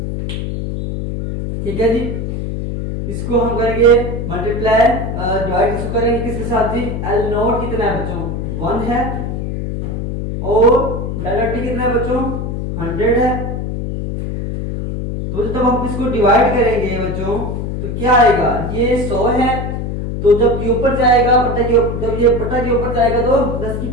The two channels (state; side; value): noise; left; hum, 4 dB below the sound